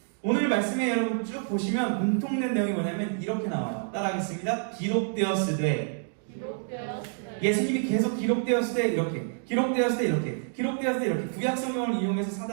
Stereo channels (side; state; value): left; silent; digital silence